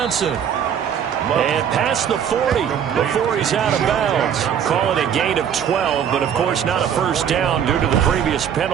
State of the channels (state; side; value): quieter; left; 8.5 dB